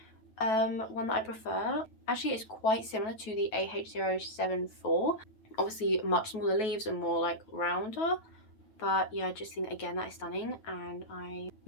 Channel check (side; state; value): right; late; 9.2 ms